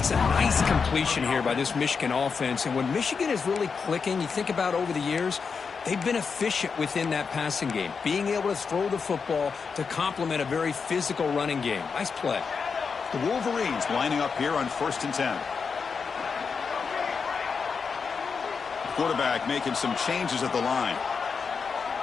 a nice completion here by this Michigan offense, and when Michigan is really clicking, you think about over the years, they've been efficient within that passing game, being able to throw the football to complement a very physical running game. Nice play. The Wolverines lining up here on 1st and 10. The quarterback making some changes at the line.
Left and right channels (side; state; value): right; quieter; 5.5 dB